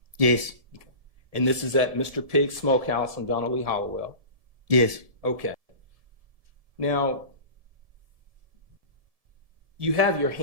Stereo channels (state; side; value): late; left; 1.7 ms